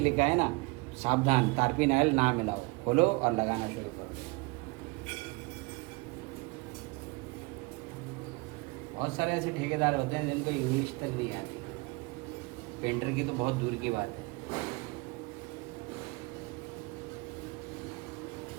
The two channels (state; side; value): quieter; left; 26.6 dB